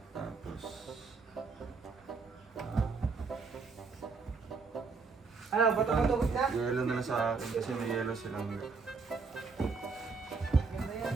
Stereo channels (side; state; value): left; quieter; 4.6 dB